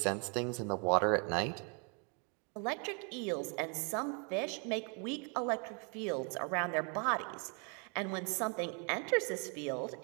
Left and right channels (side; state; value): left; quieter; 36.3 dB